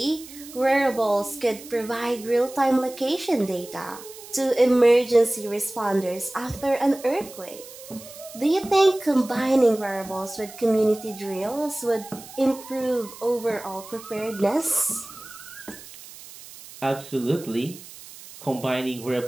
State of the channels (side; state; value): right; noise; hiss, 17 dB below the sound